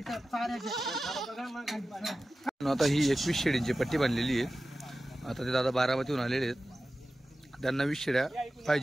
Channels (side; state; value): both; normal; correlation 0.95